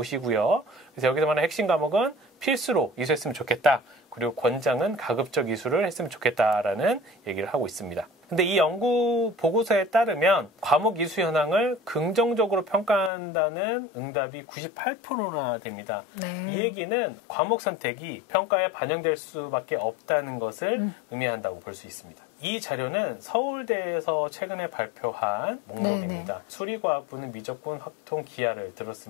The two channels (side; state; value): right; drops out; at 13.1 s